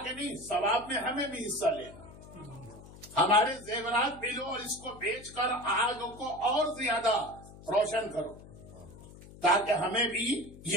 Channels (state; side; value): noise; left; hum, 18 dB below the sound